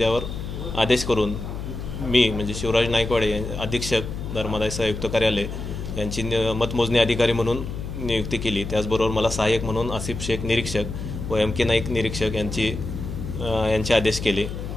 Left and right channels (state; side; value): noise; left; hum, 7 dB below the sound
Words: आदेश करून मी म्हणजे शिवराज नाईकवाडे अधीक्षक धर्मादाय आयुक्त कार्यालय यांची मतमोजणी अधिकारी म्हणून नियुक्ती केली। त्याचबरोबर मला सहाय्यक म्हणून आसिफ शेख निरीक्षक व MK नाईक निरीक्षक यांचे आदेश केले।